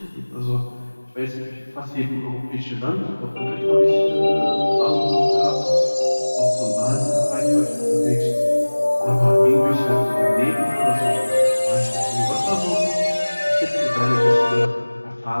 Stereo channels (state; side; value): inverted; both; correlation -1.00